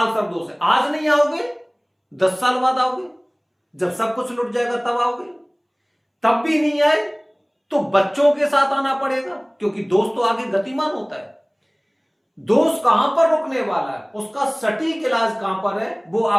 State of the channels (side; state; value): both; identical; correlation 1.00